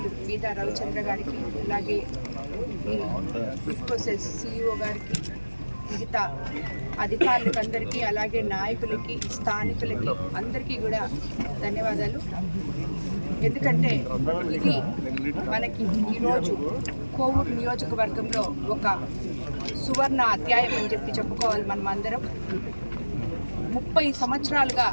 మీదా రవిచంద్ర గారికి, అలాగే ఇఫ్కోసెస్ సిఇఓ గారికి, మిగతా అధికారులకు అందరికీ, అలాగే నాయకులకి, స్థానికులకి అందరికీ కూడా ధన్యవాదాలు. ఎందుకంటే ఇది మనకి ఈరోజు కోవూరు నియోజకవర్గంలో ఒక సువర్ణ అధ్యాయం అని చెప్పి చెప్పుకోవాలి. మనం అందరం 30 సంవత్సరాలుగా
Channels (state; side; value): inverted; both; correlation -1.00